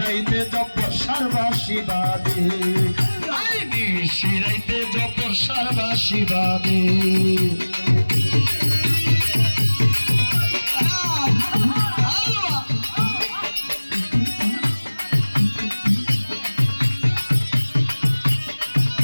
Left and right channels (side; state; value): both; inverted; correlation -1.00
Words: জপর সারবাসী বাদে। নিশিরাইতে জপর সারবাসী বাদে।